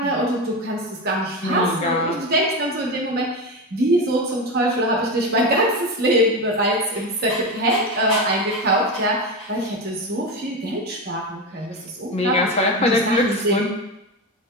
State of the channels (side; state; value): both; normal; correlation 0.18